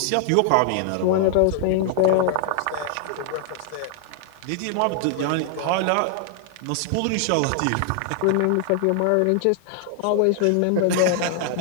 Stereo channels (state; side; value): different; both; correlation 0.00